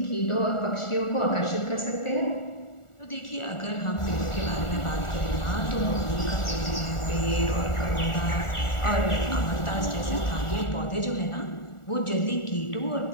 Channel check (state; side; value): late; right; 1.4 ms